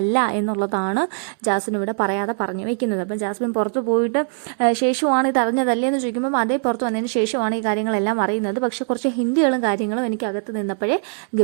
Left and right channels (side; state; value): left; silent; 65 dB below the other